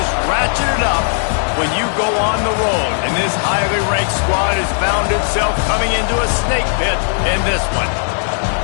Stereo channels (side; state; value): right; silent; digital silence